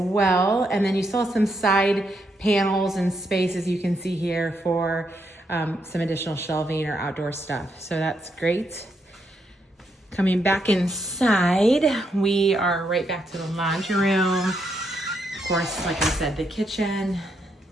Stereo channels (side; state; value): both; normal; correlation 0.79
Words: And then you still have some side panels and spaces you can see here for some additional shelving or outdoor stuff. So that's great. Coming back inside, we are right back to the laundry room. Of course, like I said, the kitchen,